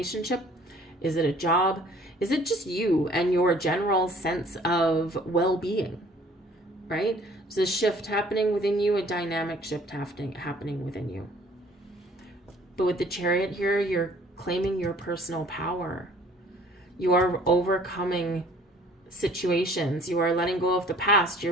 Is it a job? Is it just you and your general sense of well-being, right? There's a shift happening within you, a dynamic shift happening within you. But with the Chariot here, you're claiming your personal power. You are overcoming situations. You are letting go of the past.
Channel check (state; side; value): normal; both; correlation 0.55